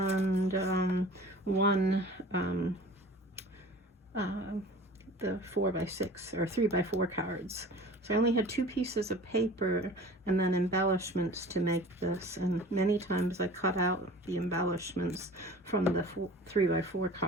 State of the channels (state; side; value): normal; both; correlation 0.42